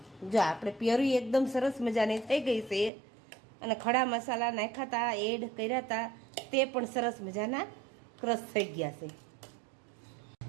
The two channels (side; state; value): left; drops out; at 2.9 s